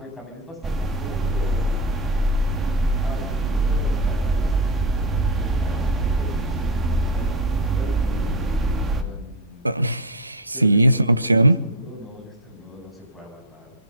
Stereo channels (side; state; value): both; normal; correlation 0.05